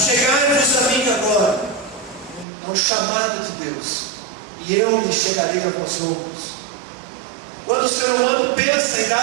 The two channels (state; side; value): drops out; left; at 2.5 s